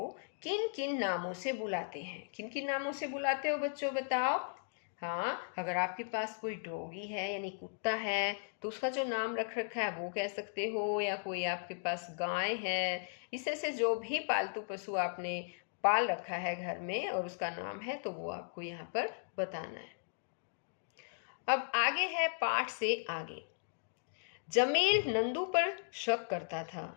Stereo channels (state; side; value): silent; right; digital silence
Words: किन किन नामों से बुलाते हैं? किन किन नामों से बुलाते हो बच्चों, बताओ। हाँ, अगर आपके पास कोई डॉगी है यानी कुत्ता है तो उसका जो नाम रख रखा है वो कह सकते हो, या कोई आपके पास गाय है, इससे से जो भी पालतू पशु आपने पाल रखा है घर में और उसका नाम है तो वो आपको यहाँ पर बताना है। अब आगे है पाठ से आगे। जमील नंदू पर शक करता था